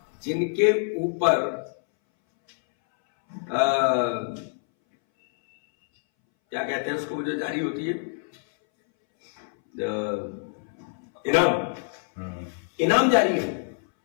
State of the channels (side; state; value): right; silent; 61 dB below the other